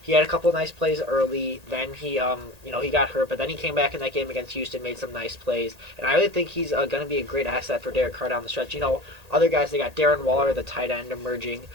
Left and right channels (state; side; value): late; left; 1.8 ms